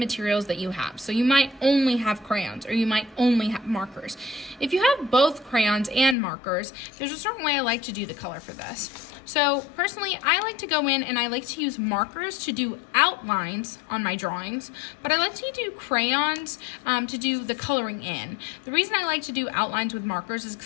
that you have. So you might only have crayons, or you might only have markers. If you have both crayons and markers, there's a certain way I like to do the color for this. So personally, I like to go in and I like to use markers to do outlines on my drawings, but I like to do crayons to do the coloring in. The reason I like to do outlines with markers is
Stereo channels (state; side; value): drops out; right; at 6.2 s